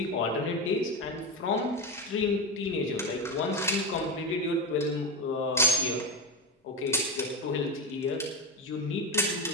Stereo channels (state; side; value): normal; both; correlation 0.15